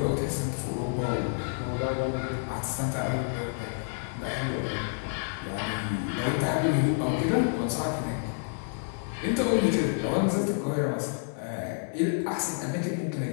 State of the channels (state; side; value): silent; right; digital silence